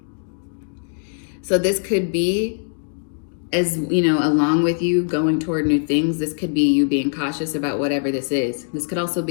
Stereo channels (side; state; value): right; silent; digital silence